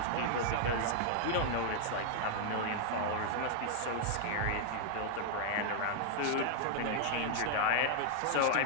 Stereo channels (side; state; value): both; different; correlation -0.01